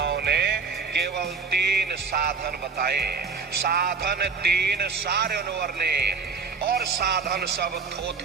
ने केवल 3 साधन बताए। साधन 3 सारे ने, और साधन सब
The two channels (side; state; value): left; quieter; 5.1 dB